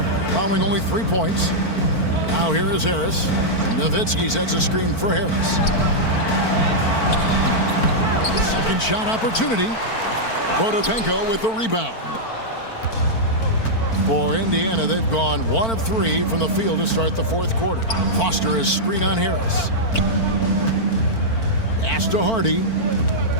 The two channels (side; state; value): right; late; 4.5 ms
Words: allowing only 3 points. Now here is Harris. Nowitzki sets a screen for Harris. Second shot opportunity. Potapenko with the rebound. For Indiana, they've gone 1 of 3 from the field to start the fourth quarter. Foster is screen on Harris. Pass to Hardy.